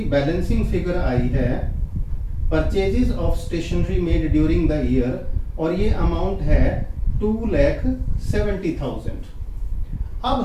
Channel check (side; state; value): both; identical; correlation 1.00